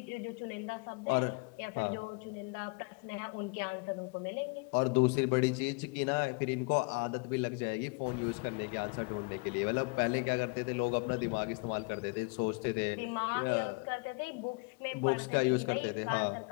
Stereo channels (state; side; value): quieter; right; 31.0 dB